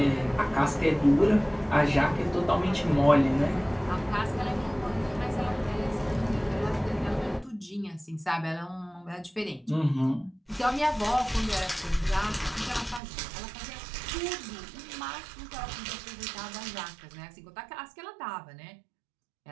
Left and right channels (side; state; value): left; drops out; at 13.0 s